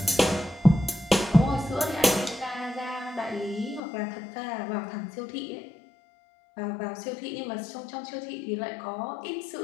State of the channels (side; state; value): right; drops out; at 3.8 s